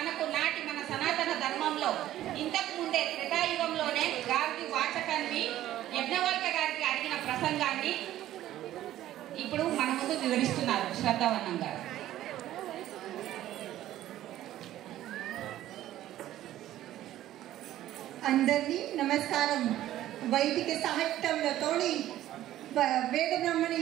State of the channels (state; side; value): quieter; left; 13.5 dB